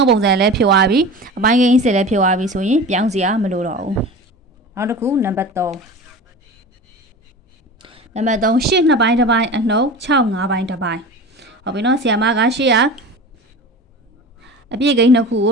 းပုံစံလည်းဖြစ်သွားပြီအပိုင်းကိန်းစစ်လည်းဖြစ်သွားပြီဆိုရင်ပြောင်းစရာမလိုတော့ဘူးနောက်တစ်ခုနံပါတ်3နံပါတ်3 8 2ပိုင်းတစ်ပိုင်းအနှုတ်6 5ပိုင်းတစ်ပိုင်းဟုတ်ပြီနော်ဆရာမက8ကအပြည့်ကိန်း2ခုကို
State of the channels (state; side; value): normal; both; correlation 0.33